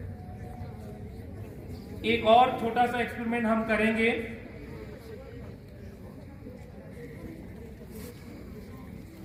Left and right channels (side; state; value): both; identical; correlation 1.00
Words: एक और छोटा सा एक्सपेरिमेंट हम करेंगे।